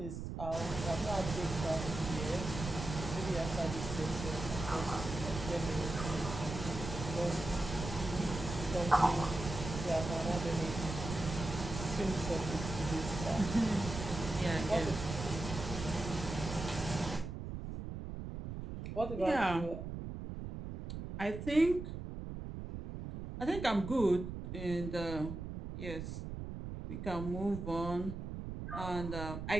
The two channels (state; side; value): noise; right; rumble, 7 dB below the sound